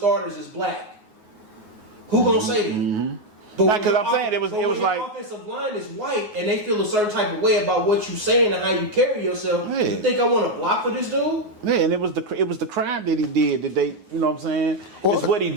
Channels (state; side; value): late; left; 9.5 ms